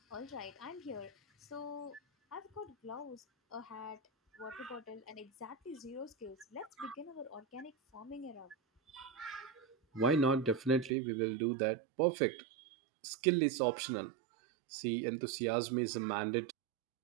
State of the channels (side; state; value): left; drops out; at 10.9 s